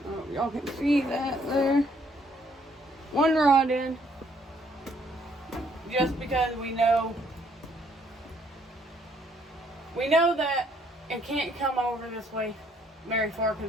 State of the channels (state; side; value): normal; both; correlation 0.67